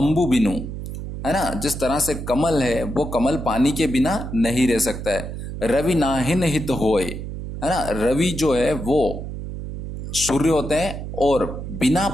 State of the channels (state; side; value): noise; right; hum, 8 dB below the sound